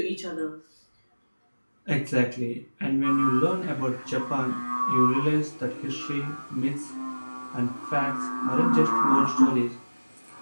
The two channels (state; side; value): inverted; both; correlation -1.00